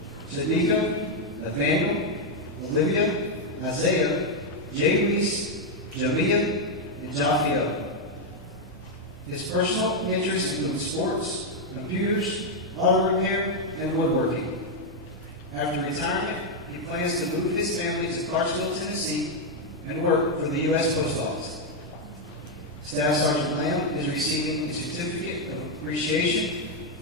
Shadika, Nathaniel, Olivia, Isaiah, Jay Reese, Jamia, and Jaffiel. His personal interests include sports, computers, auto repair, and woodworking. After retirement, he plans to move his family to Clarksville, Tennessee, and work for the U.S. Post Office. Staff Sergeant Lamb is receiving a Certificate of Appreciation,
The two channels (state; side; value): normal; both; correlation 0.01